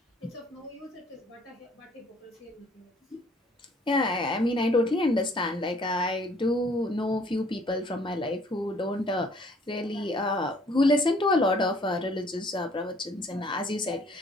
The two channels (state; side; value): normal; both; correlation 0.59